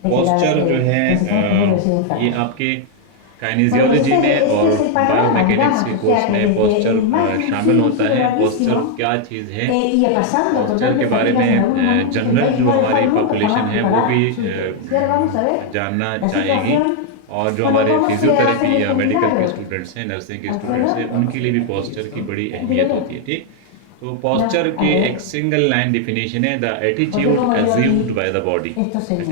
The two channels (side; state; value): both; different; correlation 0.00